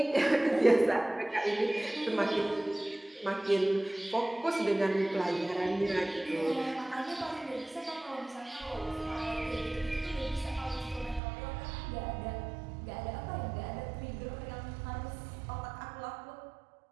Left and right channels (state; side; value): drops out; left; at 11.2 s